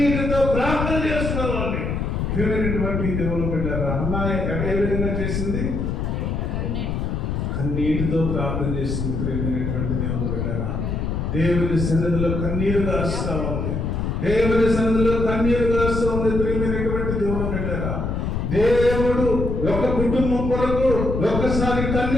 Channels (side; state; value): left; noise; rumble, 1 dB below the sound